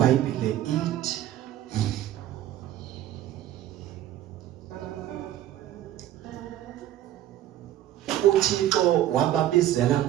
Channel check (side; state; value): left; quieter; 12.7 dB